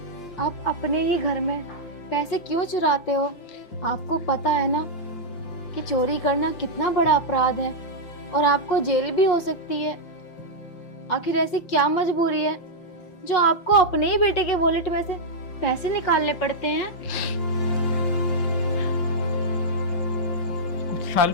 आप अपने ही घर में पैसे क्यों चुराते हो? आपको पता है ना कि चोरी करना कितना बड़ा अपराध है और आपको जेल भी हो सकती है। आखिर ऐसी क्या मजबूरी है जो आपको अपने ही बेटे के वॉलेट में से पैसे निकालने पड़ते हैं? कुछ साल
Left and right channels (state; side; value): late; right; 5.7 ms